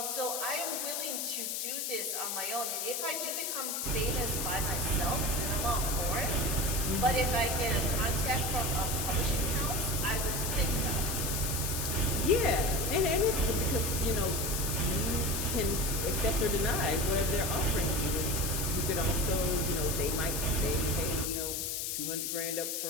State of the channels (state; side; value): noise; left; hiss, 1 dB below the sound